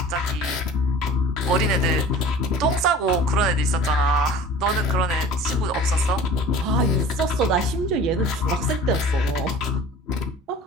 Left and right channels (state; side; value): normal; both; correlation 0.42